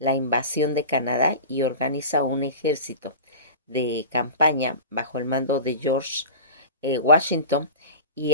invasión de Canadá y organiza un ejército de campaña bajo el mando de George Washington y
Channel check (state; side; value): inverted; both; correlation -0.32